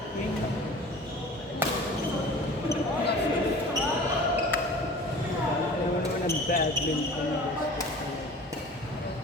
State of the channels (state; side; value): normal; both; correlation 0.42